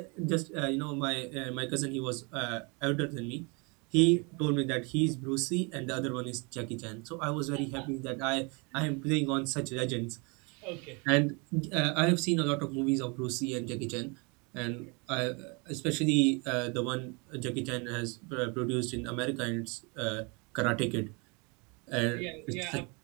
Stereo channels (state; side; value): quieter; left; 31.1 dB